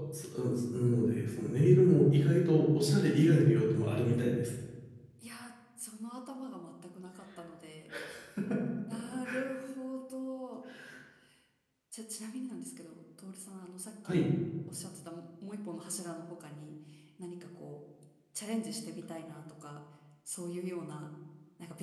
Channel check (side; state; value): both; identical; correlation 1.00